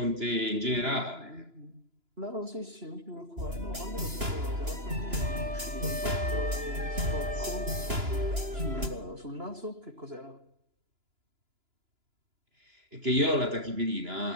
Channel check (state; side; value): late; left; 2.9 ms